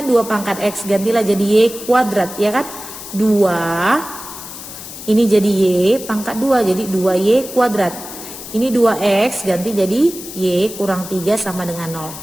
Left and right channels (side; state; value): left; noise; hiss, 12 dB below the sound